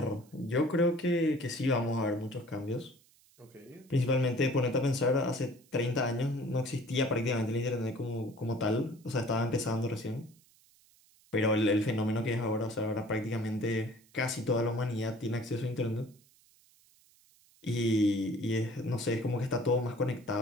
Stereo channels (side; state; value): right; noise; hiss, 30 dB below the sound